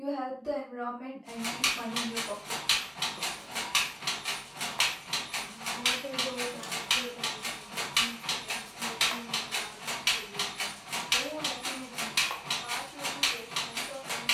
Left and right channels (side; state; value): both; identical; correlation 1.00